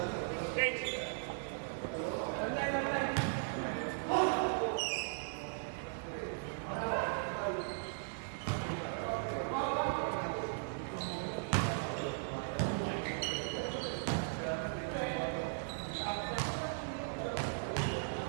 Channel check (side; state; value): left; silent; digital silence